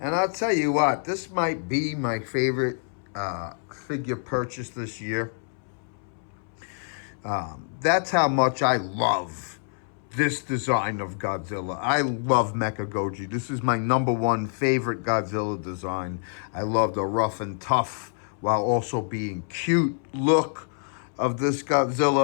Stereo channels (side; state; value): right; silent; 61 dB below the other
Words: And I'll tell you what, this might be my favorite figure purchase this year. That's how much I love this design of Godzilla. I love Mechagoji. This is my #1 favorite Godzilla design. I love the rough and tough while also being cute look of this